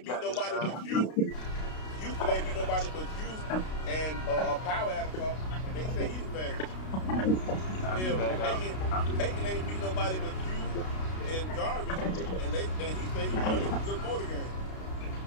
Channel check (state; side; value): late; right; 32 ms